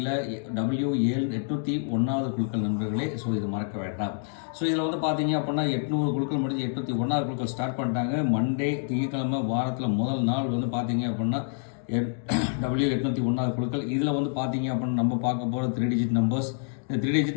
W7801 குழுக்கள் நண்பர்களே. ஸோ இது மறக்க வேண்டாம். ஸோ இதில் பார்த்தீங்க அப்படின்னா 800 குழுக்கள் முடிஞ்சு 801 குழுக்கள் ஸ்டார்ட் பண்ணிட்டாங்க. மண்டே திங்கட்கிழமை வாரத்தில் முதல் நாள் பார்த்தீங்க அப்படின்னா W801 குழுக்கள். இதில் பார்த்தீங்க அப்படின்னா நம்ம பார்க்க போகிற 3 டிஜிட் நம்பர்ஸ். இந்த 3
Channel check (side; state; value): right; silent; digital silence